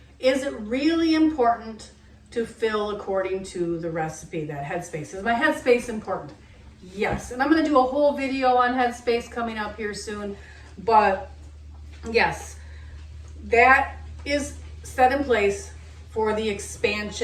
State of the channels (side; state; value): both; identical; correlation 1.00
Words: Is it really important to fill according to the recipe, that headspace? Is my headspace important? Yes, and I'm going to do a whole video on headspace coming up here soon, but yes, that is set in place for the